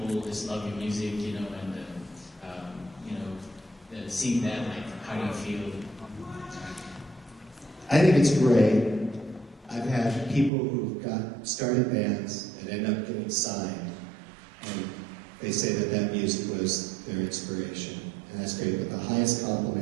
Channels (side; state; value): left; drops out; at 10.5 s